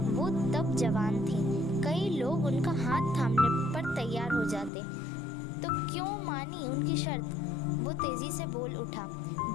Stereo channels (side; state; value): right; drops out; at 4.7 s